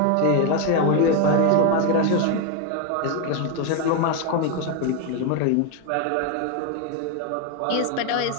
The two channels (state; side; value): different; both; correlation 0.01